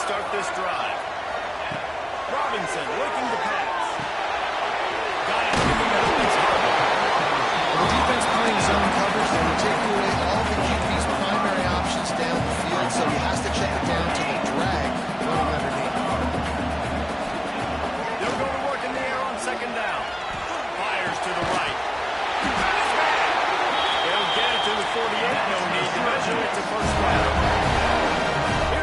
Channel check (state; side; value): identical; both; correlation 1.00